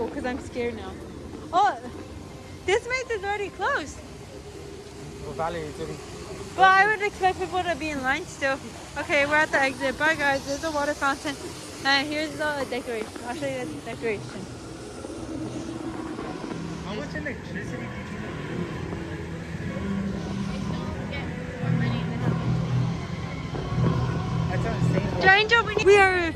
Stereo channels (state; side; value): identical; both; correlation 1.00